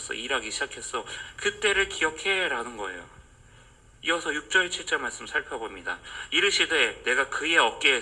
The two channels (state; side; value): identical; both; correlation 1.00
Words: 일하기 시작했어. 그때를 기억해 라는 거예요. 이어서 6절 7절 말씀 살펴봅니다. 이르시되 내가 그의